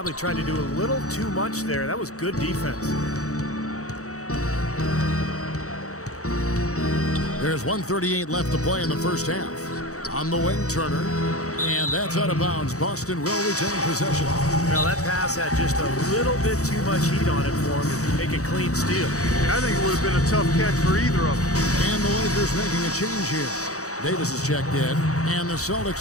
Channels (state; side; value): late; right; 0.65 ms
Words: tried to do a little too much there. That was good defense. There's 1:38 left to play in the first half. On the wing, Turner. And that's out of bounds. Boston will retain possession. Now that pass had just a little bit too much heat on it for him to make a clean steal. I think it would have been a tough catch for either of them. And the Lakers making a change here. Davis is checked in. And the